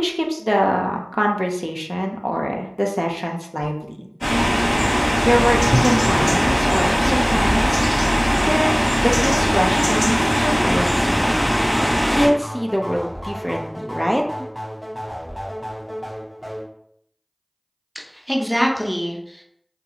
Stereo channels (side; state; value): both; identical; correlation 1.00